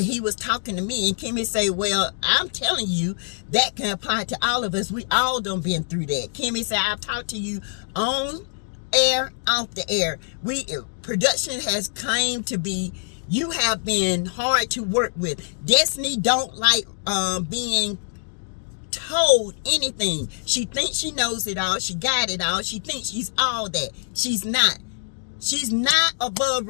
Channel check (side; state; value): right; silent; digital silence